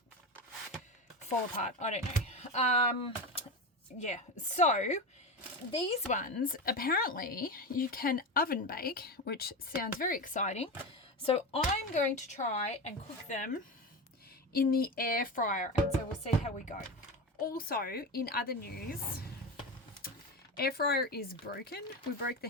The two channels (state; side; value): normal; both; correlation 0.21